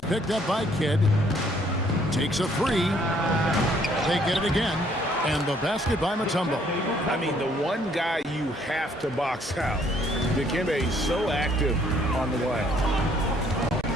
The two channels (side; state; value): both; normal; correlation 0.64